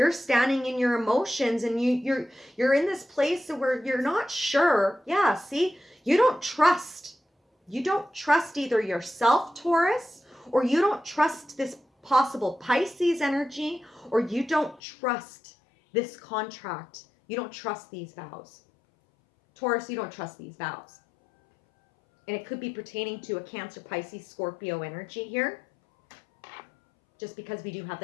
standing in your emotions and you're in this place where you're not sure. Yeah, see, you don't trust. You don't trust either yourself, Taurus, or you don't trust this possible Pisces energy, or you don't trust this contract. You don't trust these vows. Taurus, you don't trust these vows. And it could be pertaining to a Cancer, Pisces, Scorpio energy here, just because we do have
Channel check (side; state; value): right; drops out; at 14.8 s